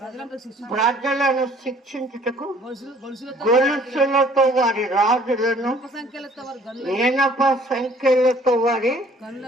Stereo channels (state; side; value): normal; both; correlation 0.56